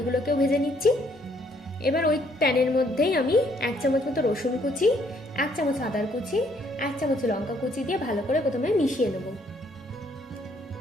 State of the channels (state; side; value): normal; both; correlation 0.67